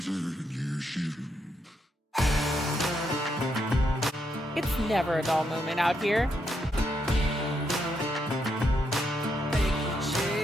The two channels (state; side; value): normal; both; correlation 0.79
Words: It's never a dull moment out here.